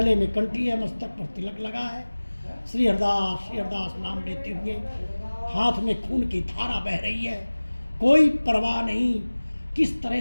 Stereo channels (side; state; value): both; inverted; correlation -1.00